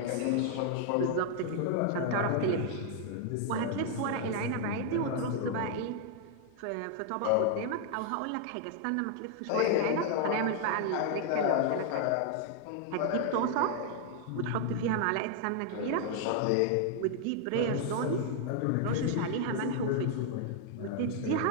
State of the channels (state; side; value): different; both; correlation 0.00